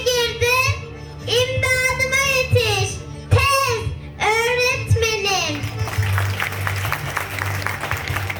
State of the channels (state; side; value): identical; both; correlation 1.00